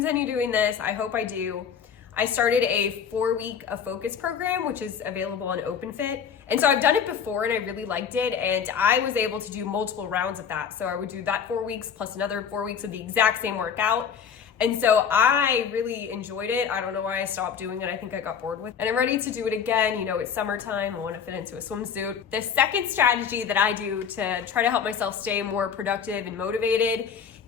doing this. I hope I do. I started a 4-week focus program, which is available on OpenFit. And so I've done it before and I really liked it. And I was able to do multiple rounds of that. So I would do that 4 weeks plus another 4 weeks of the exact same workout. And so I really enjoyed it. I don't know why I stopped doing it. I think I got bored with it. And I'm ready to do it again. It's summertime. I want to fit into a swimsuit. The second strategy that I do to try to help myself stay more productive and motivated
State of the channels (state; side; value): quieter; right; 7.3 dB